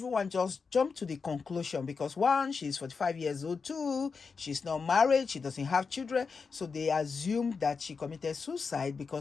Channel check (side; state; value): right; quieter; 5.1 dB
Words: jumped to the conclusion because one, she's 45 years old, two, she's not married, she doesn't have children, so they assumed that she committed suicide